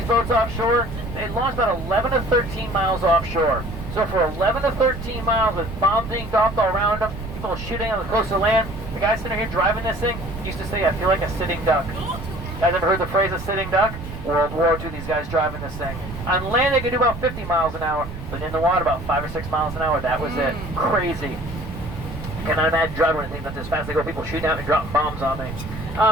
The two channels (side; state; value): right; noise; rumble, 10 dB below the sound